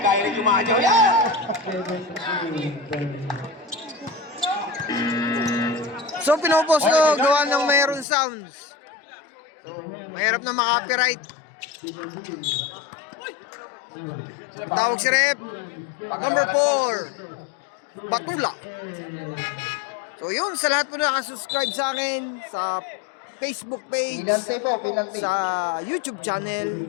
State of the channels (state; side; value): drops out; right; at 8.1 s